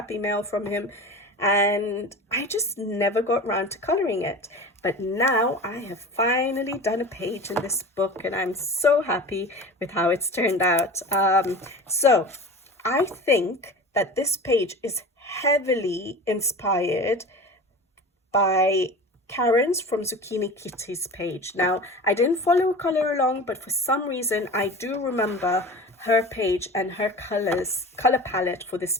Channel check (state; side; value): normal; both; correlation 0.34